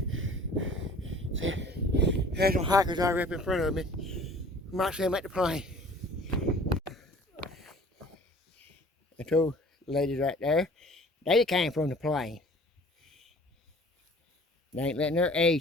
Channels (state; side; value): normal; both; correlation 0.49